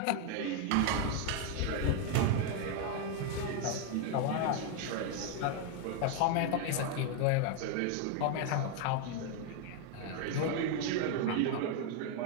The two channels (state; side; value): different; both; correlation 0.01